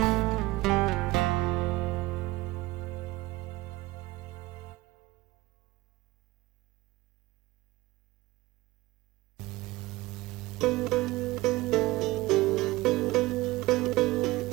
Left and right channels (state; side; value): quieter; left; 19.8 dB